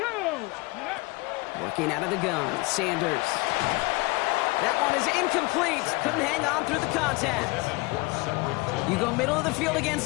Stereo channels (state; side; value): quieter; right; 24.3 dB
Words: Working out of the gun, Sanders. That one is incomplete. Couldn't hang on through the contact. You go middle of the field against